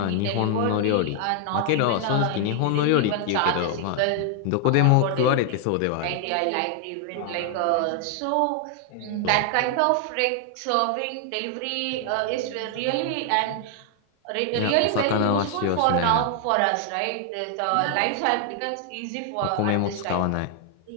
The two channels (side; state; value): both; different; correlation 0.00